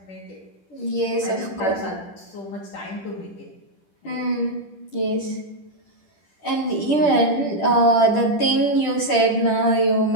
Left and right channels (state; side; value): late; right; 10 ms